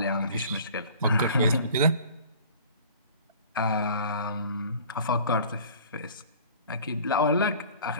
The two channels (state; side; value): inverted; both; correlation -0.46